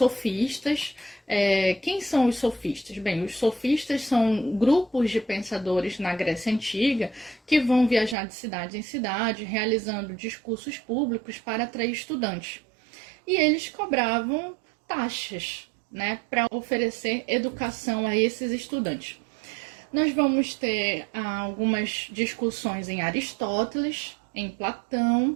Quem são os sofistas? Bem, os sofistas são grupos de pensadores na Grécia Antiga que vão viajar de cidade em cidade, realizando discursos públicos para atrair estudantes. E eles cobravam taxas, né, para oferecer educação a esses estudantes. Nós vamos ter algumas discussões em Aristóteles, em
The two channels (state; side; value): drops out; left; at 8.2 s